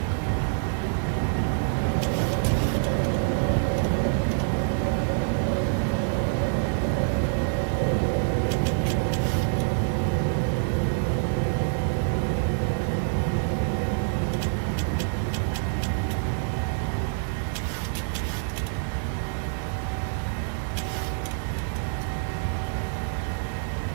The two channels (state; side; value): silent; left; digital silence